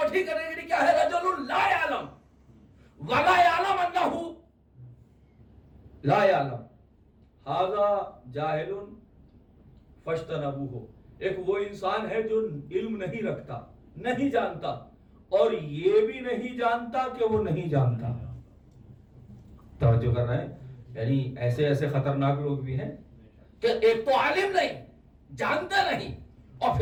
کیٹیگری کیا ہے؟ رجل لا یعلم ولا یعلم انہ لا یعلم، ھذا جاہل فاجتنبوہ. ایک وہ انسان ہے جو علم نہیں رکھتا، نہیں جانتا، اور یہ بھی نہیں جانتا کہ وہ نہیں جانتا. توجہ کر رہے ہیں؟ یعنی ایسے ایسے خطرناک لوگ بھی ہیں کہ ایک تو عالم نہیں، جانتے نہیں، اور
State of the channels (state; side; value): identical; both; correlation 1.00